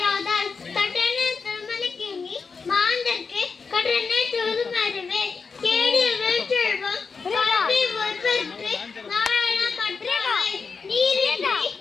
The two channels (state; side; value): quieter; right; 5.1 dB